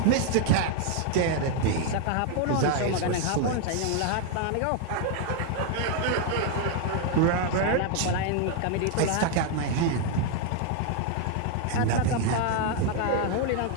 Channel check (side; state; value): both; different; correlation 0.00